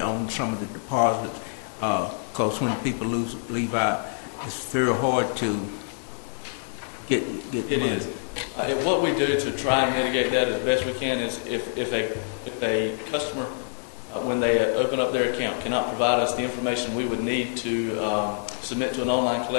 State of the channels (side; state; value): right; silent; digital silence